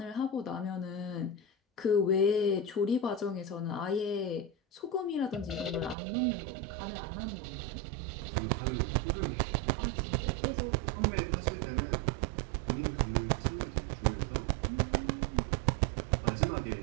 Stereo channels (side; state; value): left; drops out; at 6.0 s